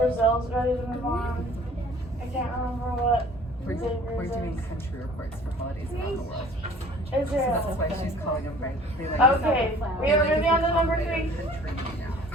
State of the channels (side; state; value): both; normal; correlation 0.50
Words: ready to move on. I can't remember what We're Xavier's doing is. country reports for holidays around the world. So Israel. that's why she's calling them right. They like Okay, we are moving on to number 3.